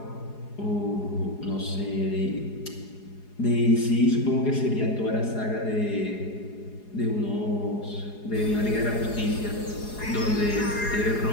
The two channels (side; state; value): right; late; 4.8 ms